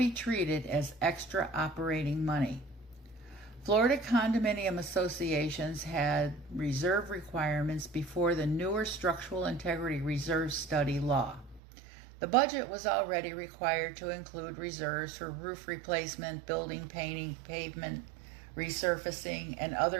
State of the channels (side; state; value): left; drops out; at 11.6 s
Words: treated as extra operating money. Florida condominium associations had reserve requirements before the newer structural integrity reserve study law. The budget was already required to include reserves for roof replacement, building painting, pavement resurfacing, and